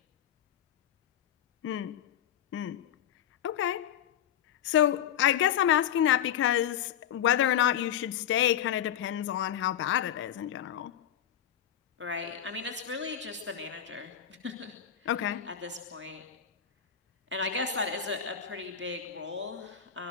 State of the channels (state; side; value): quieter; right; 9.9 dB